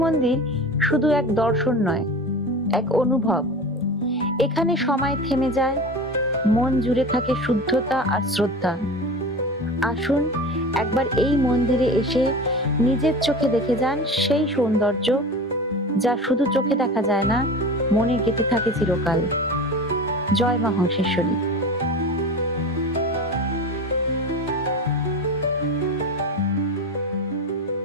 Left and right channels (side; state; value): both; normal; correlation 0.31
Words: মন্দির শুধু এক দর্শন নয়, এক অনুভব। এখানে সময় থেমে যায়, মন জুড়ে থাকে শুদ্ধতা আর শ্রদ্ধা। আসুন একবার এই মন্দিরে এসে নিজের চোখে দেখে যান সেই সৌন্দর্য, যা শুধু চোখে দেখা যায় না, মনে গেঁথে থাকে চিরকাল। জয় মা হংসেশ্বরী।